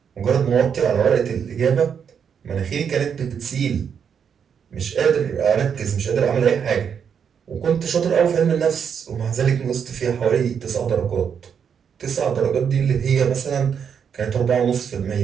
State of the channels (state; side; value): quieter; left; 7.3 dB